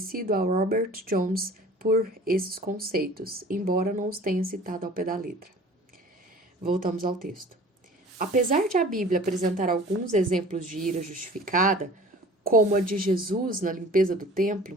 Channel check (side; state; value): both; normal; correlation 0.45